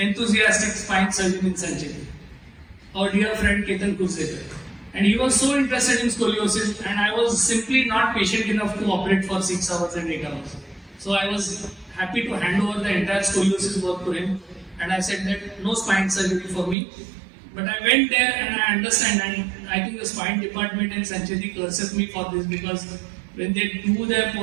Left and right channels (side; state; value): left; drops out; at 16.8 s